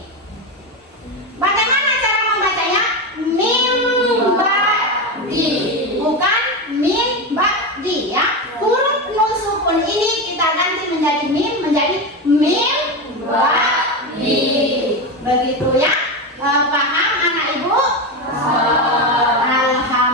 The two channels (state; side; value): normal; both; correlation 0.16